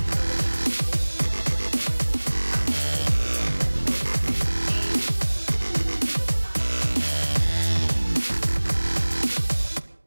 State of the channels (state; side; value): inverted; both; correlation -1.00